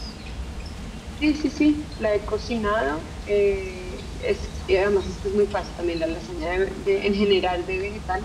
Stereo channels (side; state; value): both; identical; correlation 1.00